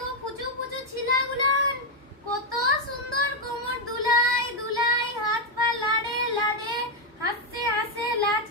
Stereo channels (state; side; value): normal; both; correlation 0.02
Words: ফুচু ফুচু ছিলাগুলান কত সুন্দর কোমর দুলাই দুলাই, হাত পা লাড়ে লাড়ে, হাসছে হাসে লাজ